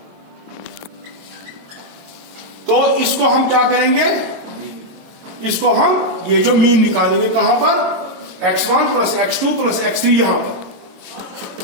तो इसको हम क्या करेंगे, इसको हम ये जो मीन निकालेंगे कहां पर, x1 plus x2 plus x3 यहां पर,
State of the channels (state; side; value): late; left; 22 ms